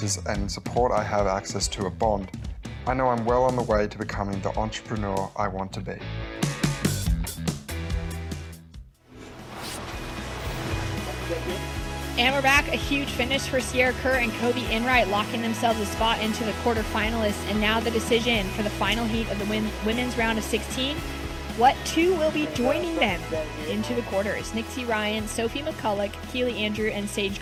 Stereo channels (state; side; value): identical; both; correlation 1.00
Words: and support I have access to at Bond, I know I'm well on the way to becoming the entrepreneur I want to be. And we're back. A huge finish for Sierra Kerr and Kobe Enright, locking themselves a spot into the quarterfinalists. And now the decision for the final heat of the women's round of 16. What two will be joining them into the quarters? Nixie Ryan, Sophie McCulloch, Keely Andrew, and Sage